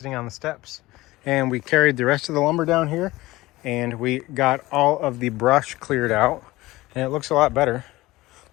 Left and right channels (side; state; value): right; quieter; 18.9 dB